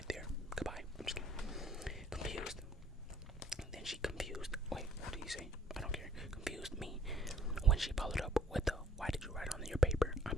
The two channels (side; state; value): both; normal; correlation 0.61